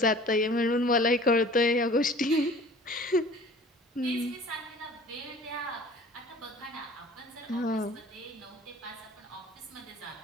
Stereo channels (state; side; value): normal; both; correlation 0.47